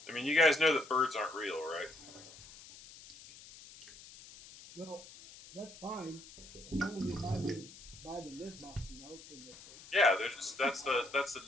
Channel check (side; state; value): left; noise; hiss, 18 dB below the sound